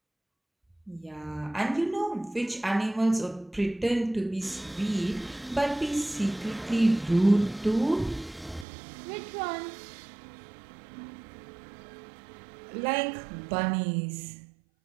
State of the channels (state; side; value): drops out; left; at 8.7 s